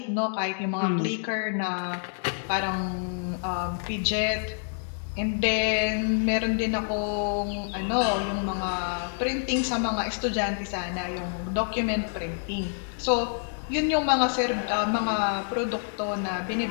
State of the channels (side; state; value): right; silent; digital silence